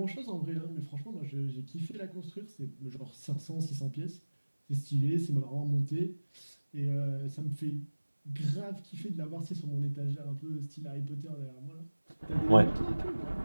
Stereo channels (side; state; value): both; inverted; correlation -1.00